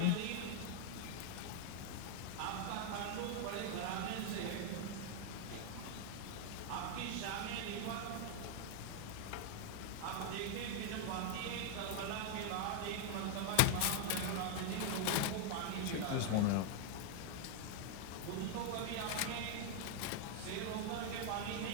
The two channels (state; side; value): different; both; correlation 0.00